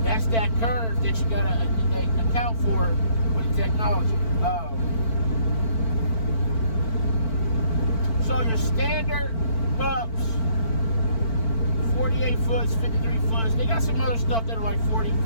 That's that curve that you gotta account for with technology. So your standard pups, 48 foots, 53 foots. They got some other stuff that are like 40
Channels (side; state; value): right; late; 4.5 ms